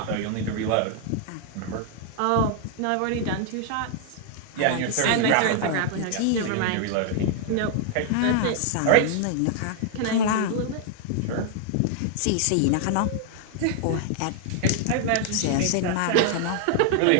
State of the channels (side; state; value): both; different; correlation 0.00